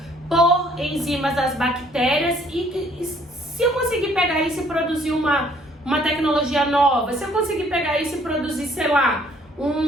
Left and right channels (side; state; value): both; normal; correlation 0.62